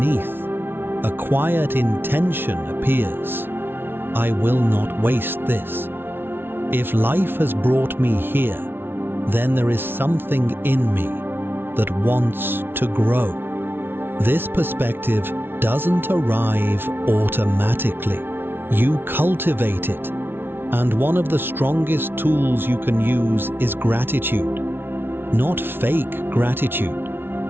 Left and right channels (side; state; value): left; late; 0.11 ms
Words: a quiet intention appears. I will not waste this. If life has brought me here, then there is something in me that wants to grow. This perspective doesn't arrive automatically. You cultivate it, and one of the strongest tools you can use is gratitude. Not fake gratitude.